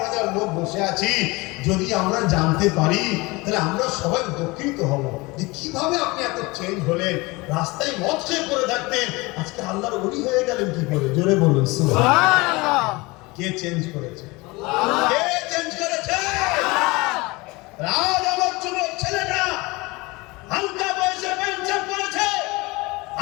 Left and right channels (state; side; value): quieter; right; 23.7 dB